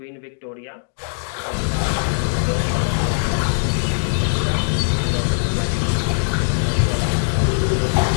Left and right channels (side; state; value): right; silent; digital silence